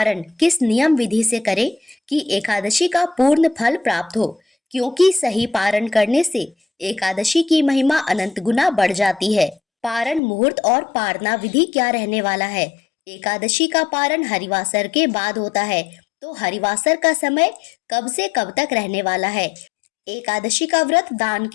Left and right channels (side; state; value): right; drops out; at 10.2 s